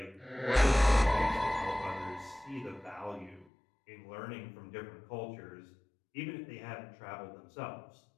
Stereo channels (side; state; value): right; drops out; at 3.5 s